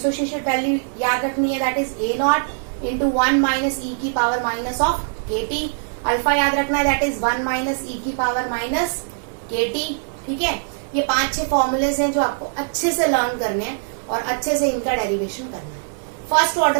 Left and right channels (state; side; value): silent; left; digital silence